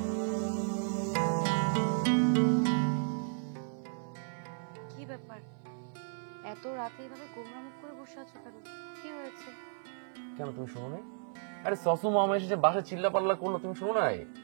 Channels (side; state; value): left; silent; 55 dB below the other